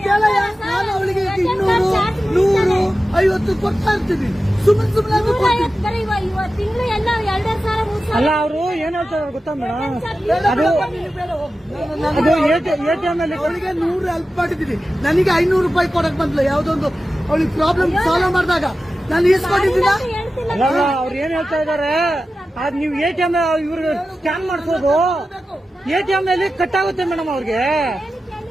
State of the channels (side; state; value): both; normal; correlation 0.93